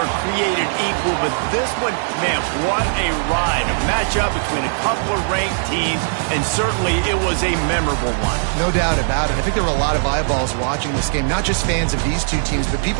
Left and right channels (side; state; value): left; silent; digital silence